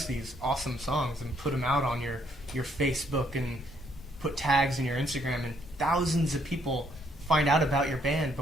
these awesome songs and put them out on your Facebook and put tags in your Instagram, and thousands of people find out about your band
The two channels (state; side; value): normal; both; correlation 0.70